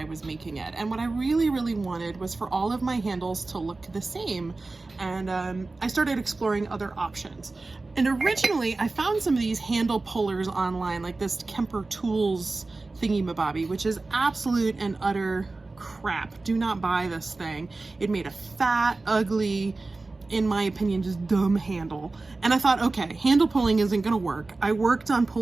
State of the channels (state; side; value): quieter; left; 3.4 dB